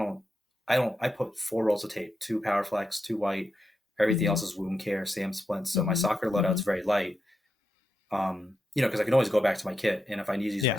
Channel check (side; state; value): both; normal; correlation 0.86